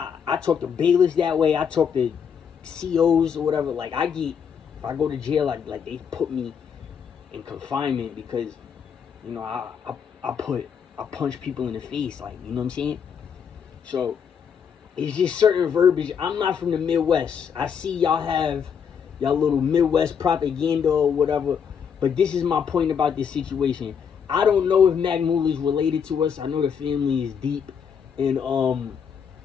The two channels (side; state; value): right; quieter; 7.2 dB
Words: talk to bailiffs that way. I talk to COs or whatever. Like if I go to jail, like they put me in confinement because, I punch people in the face, like, you know what I'm saying? So it's just certain verbiage. I'm not from the Midwest. I see y'all have y'all little Midwest propaganda or whatever, but this is my point about this situation. I don't know if Mac Muller is related to us. I know the family is deep